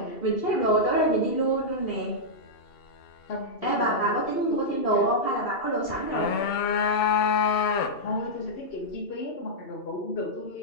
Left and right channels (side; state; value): right; late; 2.7 ms